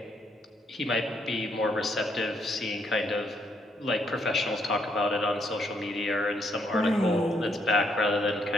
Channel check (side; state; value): both; normal; correlation 0.73